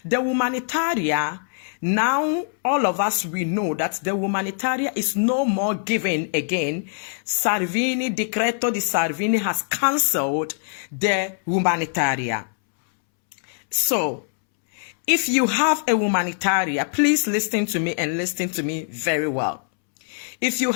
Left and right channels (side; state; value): right; silent; 64 dB below the other